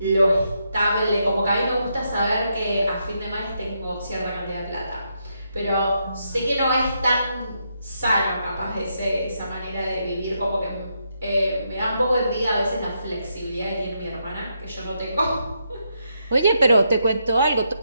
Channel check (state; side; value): inverted; both; correlation -0.80